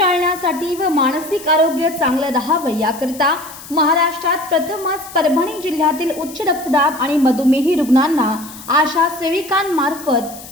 व मानसिक आरोग्य चांगलं राहावं याकरिता महाराष्ट्रात प्रथमच परभणी जिल्ह्यातील उच्च रक्तदाब आणि मधुमेही रुग्णांना आशा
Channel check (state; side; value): noise; left; hiss, 16 dB below the sound